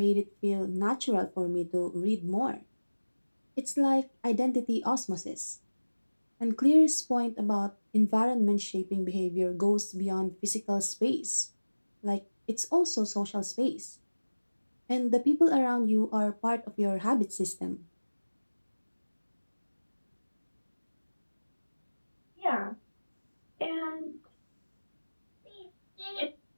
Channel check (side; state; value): both; inverted; correlation -1.00